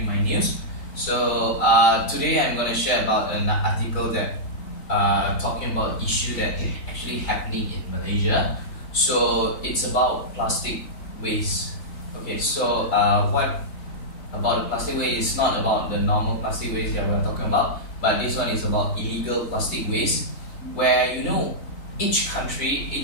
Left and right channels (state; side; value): late; right; 3.9 ms